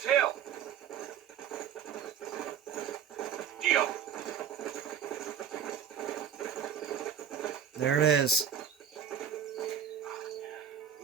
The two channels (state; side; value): quieter; left; 8.3 dB